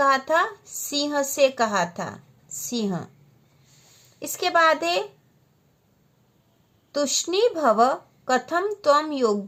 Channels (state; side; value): identical; both; correlation 1.00